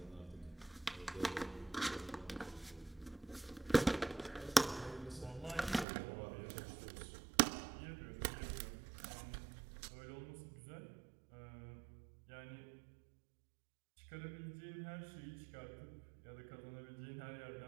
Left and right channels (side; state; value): left; drops out; at 5.9 s